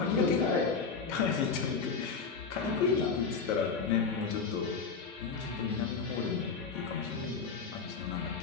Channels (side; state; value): right; quieter; 5.2 dB